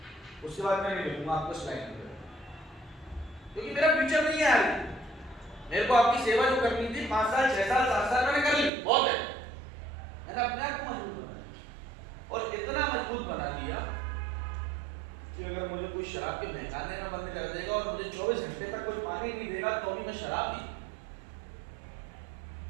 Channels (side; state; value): left; drops out; at 8.7 s